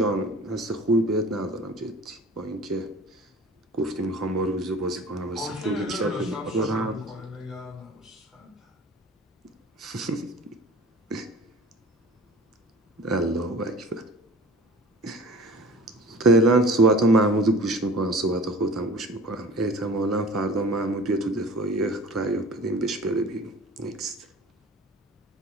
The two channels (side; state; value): both; normal; correlation 0.43